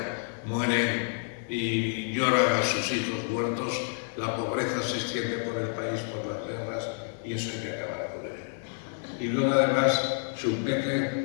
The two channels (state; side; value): silent; right; 59 dB below the other